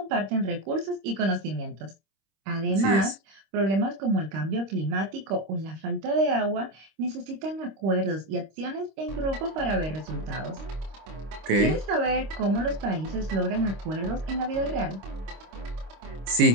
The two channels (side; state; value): left; late; 26 ms